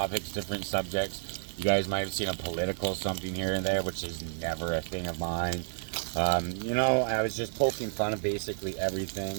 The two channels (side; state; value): left; silent; 57 dB below the other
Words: different subjects. You guys might have seen a political something here and there, which is never a thing of mine. You know, I was just poking fun of basically